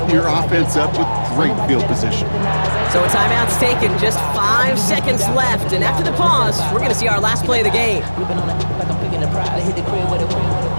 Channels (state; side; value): inverted; both; correlation -1.00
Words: your offense up with great field position. So a timeout's taken, just 5 seconds left, and after the pause, we're going to see our last play of the game.